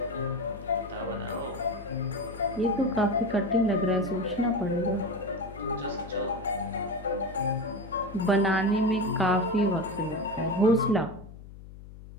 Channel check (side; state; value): left; noise; hum, 16 dB below the sound